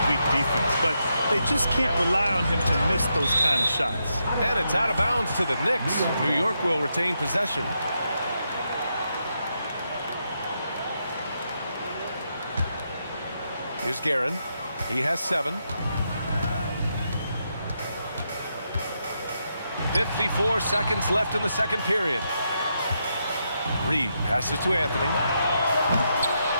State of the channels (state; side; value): inverted; both; correlation -0.82